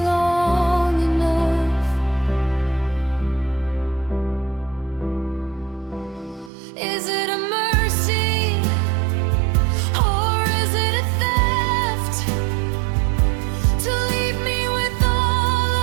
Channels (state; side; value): drops out; left; at 6.5 s